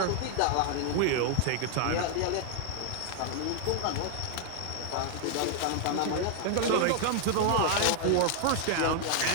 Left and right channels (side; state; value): both; different; correlation 0.00